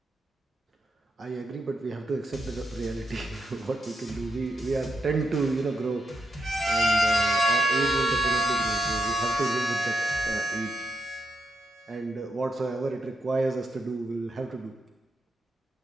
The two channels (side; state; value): both; normal; correlation 0.83